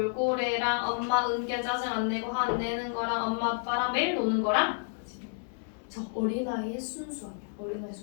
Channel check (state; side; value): silent; right; digital silence